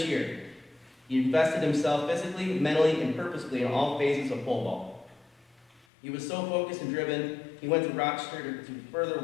year, he invested himself physically, mentally, and purposefully in all phases of pole vault. He was so focused and driven, he went to Rochester to further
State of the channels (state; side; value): drops out; right; at 5.9 s